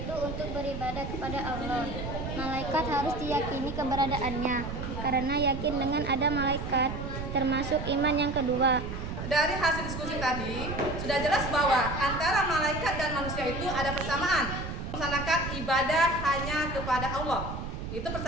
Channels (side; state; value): right; noise; rumble, 6 dB below the sound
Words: untuk beribadah kepada Allah. Malaikat harus diyakini keberadaannya, karena yakin dengan ada malaikat termasuk iman yang kedua. Dari hasil diskusi tadi, sudah jelas bahwa antara malaikat dan manusia itu ada persamaan. Melaksanakan ibadah hanya kepada Allah. Itu